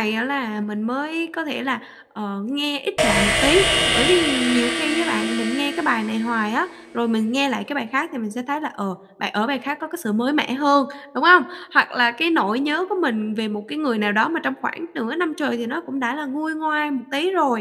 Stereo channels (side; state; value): both; identical; correlation 1.00